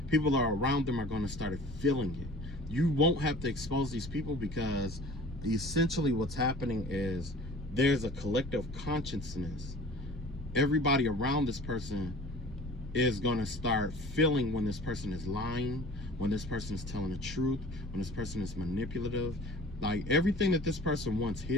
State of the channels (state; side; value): normal; both; correlation 0.45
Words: People that are around them are going to start feeling it. You won't have to expose these people, because essentially what's happening is there's a collective consciousness. Everybody around this person is going to start feeling when this person is lying, when this person is telling the truth, when this person is manipulative. Like everything that this person wants